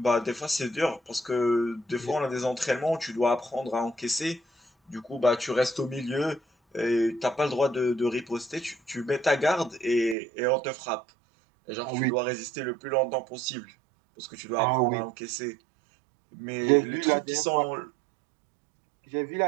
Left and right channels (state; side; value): drops out; left; at 10.2 s